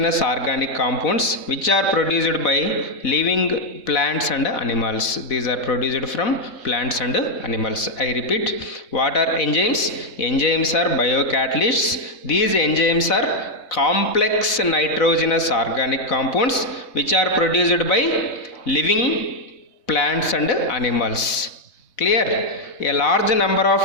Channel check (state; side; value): late; right; 4.0 ms